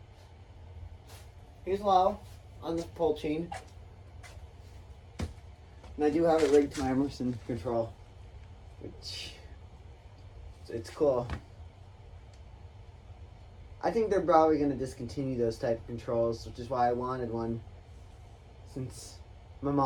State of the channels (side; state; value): both; identical; correlation 1.00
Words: Here's low on the pull chain. And I do have it rigged to my Emerson control, which it's cool. I think they're probably going to discontinue those type of controls, which is why I wanted one, since my